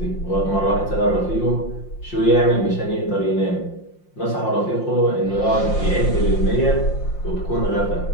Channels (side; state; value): right; late; 5.7 ms